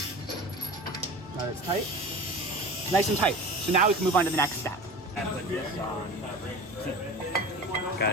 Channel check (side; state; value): both; normal; correlation 0.35